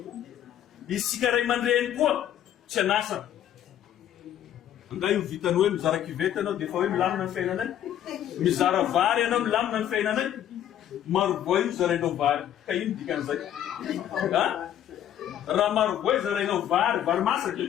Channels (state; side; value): quieter; right; 10.9 dB